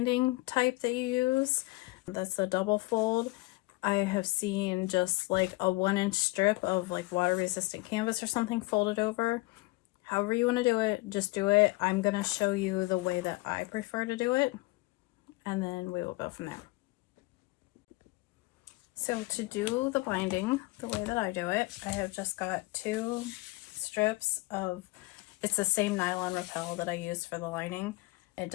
type that you use. That's the double fold. I have seen just like a 1-inch strip of like water resistant canvas or something folded over. However you want to do it, just do it. I'm going to show you the way that I prefer to do it, and then we will go from there. So to do the binding the way that I do it, I have just got 2 strips of, it's the same nylon rappel that I use for the lining. It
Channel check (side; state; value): right; quieter; 22.8 dB